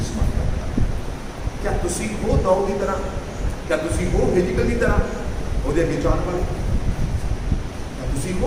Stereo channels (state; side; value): identical; both; correlation 1.00